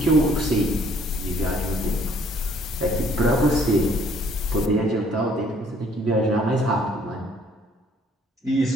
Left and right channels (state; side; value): normal; both; correlation 0.61